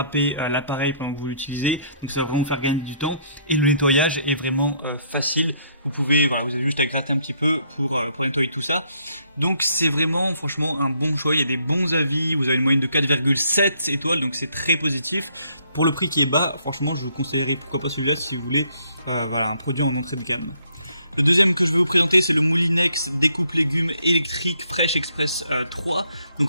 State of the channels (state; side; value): inverted; both; correlation -0.69